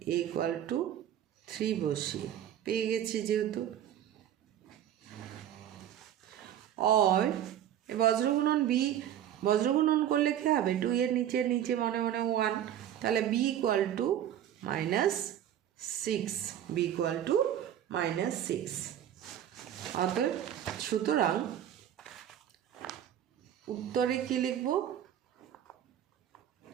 a ইকুয়াল টু 3 বসিয়ে। পেয়ে গেছি যেহেতু। और বজ্রগুণন বি, বজ্রগুণন করলে কী হবে, 2 এর নিচে নিচে মনে মনে 1, তাহলে b equal to -6, b equal to -6। অতএব সুতরাং উত্তরে কি লিখব,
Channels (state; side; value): quieter; left; 10.7 dB